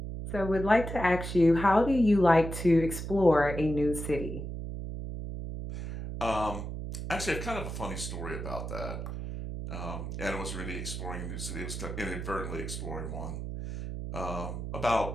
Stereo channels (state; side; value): noise; right; hum, 6 dB below the sound